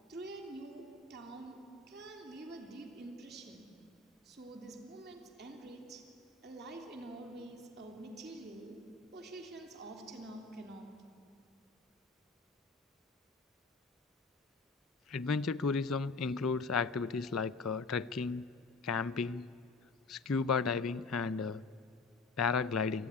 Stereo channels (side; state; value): right; quieter; 4.1 dB